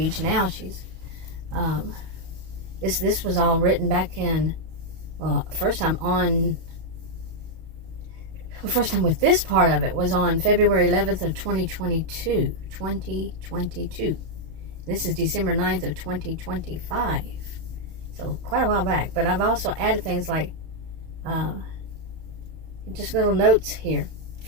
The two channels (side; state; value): left; late; 31 ms